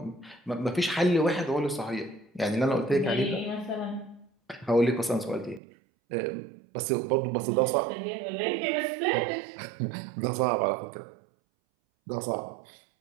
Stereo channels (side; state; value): left; drops out; at 5.6 s